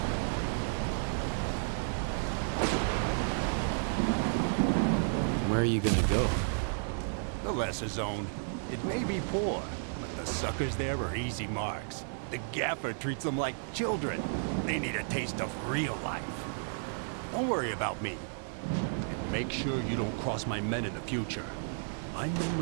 Where are you gonna go? The lesser zone. It may be poor, but the suckers there are easy marks. The gaffer treats them like children. They need a taste of real life. Don't worry about me. Make sure you don't cross my men in the future. My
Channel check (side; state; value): left; silent; 56 dB below the other